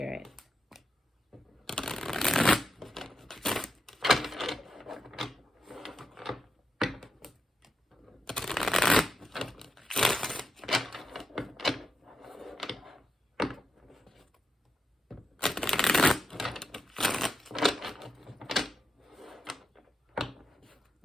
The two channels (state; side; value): normal; both; correlation 0.86